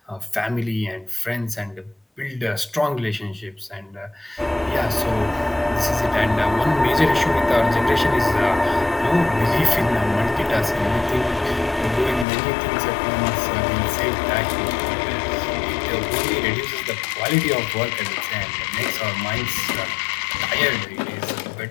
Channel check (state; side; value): drops out; right; at 12.2 s